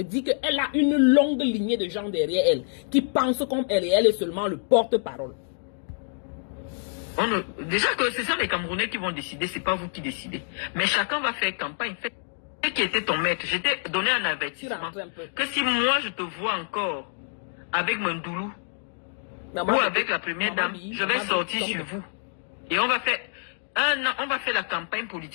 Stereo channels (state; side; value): silent; right; digital silence